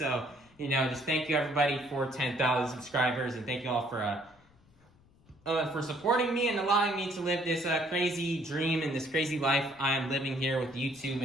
you know, just thank you everybody for 10,000 subscribers, and thank you all for supporting me and allowing me to live this crazy dream and this crazy life I am living here with YouTube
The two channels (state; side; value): noise; left; rumble, 30 dB below the sound